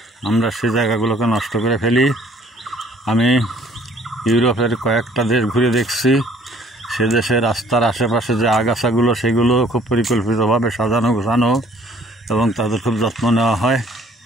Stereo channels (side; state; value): both; normal; correlation 0.57